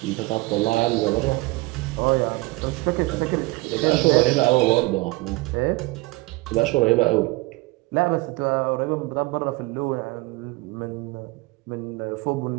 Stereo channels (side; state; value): left; quieter; 22.3 dB